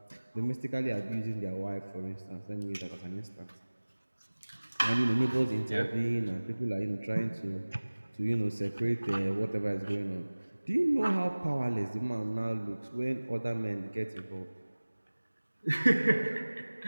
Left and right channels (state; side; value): inverted; both; correlation -1.00